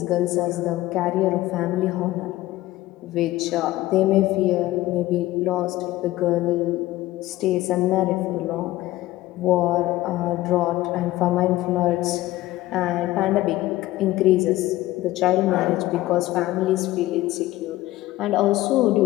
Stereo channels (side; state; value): right; quieter; 16.7 dB